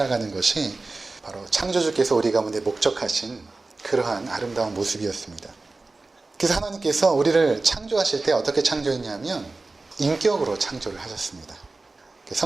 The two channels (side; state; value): left; quieter; 3.5 dB